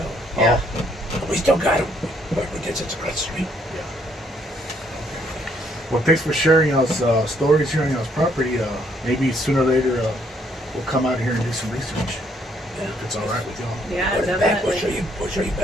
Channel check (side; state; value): both; normal; correlation 0.69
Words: But, yeah. We still got them, but we just across the street. Well, thanks for sharing us stories here on y'all's property. Maybe sooner or later we'll come out here and do some research. Yeah. If it's all right with y'all. Yeah, Put it back. definitely. We'll show you